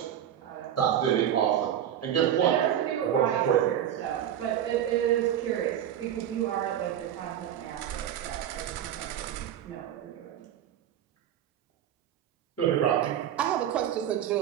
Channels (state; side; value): quieter; left; 10.3 dB